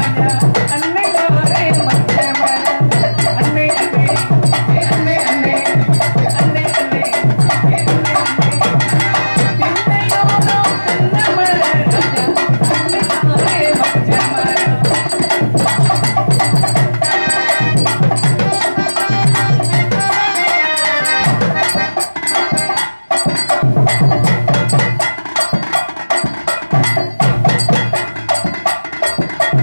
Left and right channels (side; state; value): both; inverted; correlation -1.00